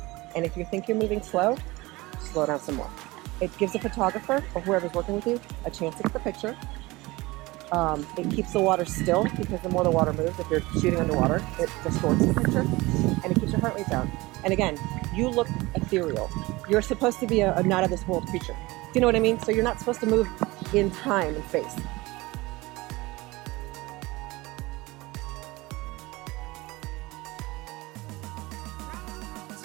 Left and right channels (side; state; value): left; quieter; 21.4 dB